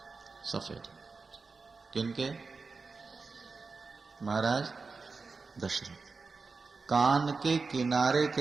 सफेद। किनके? महाराज दशरथ। कान के किनारे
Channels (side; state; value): left; quieter; 4.4 dB